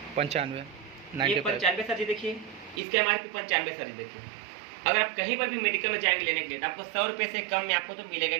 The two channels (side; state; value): left; drops out; at 2.8 s